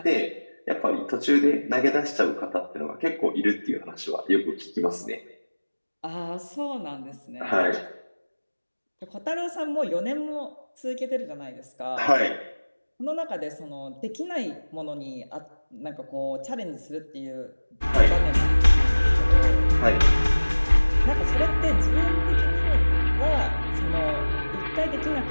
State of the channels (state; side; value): inverted; both; correlation -1.00